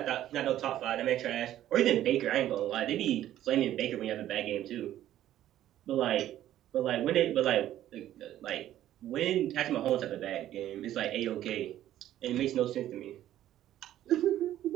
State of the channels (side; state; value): left; quieter; 12.6 dB